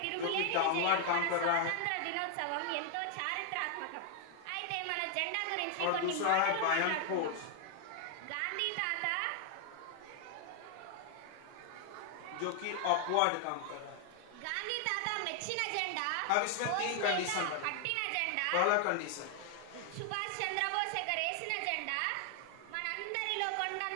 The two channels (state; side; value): different; both; correlation 0.00